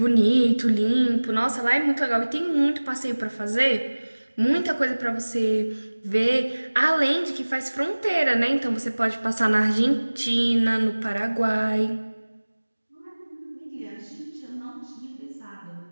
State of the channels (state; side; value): inverted; both; correlation -1.00